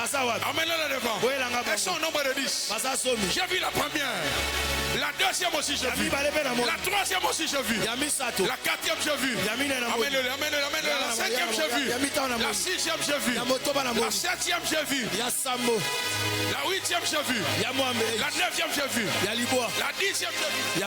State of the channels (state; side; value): identical; both; correlation 1.00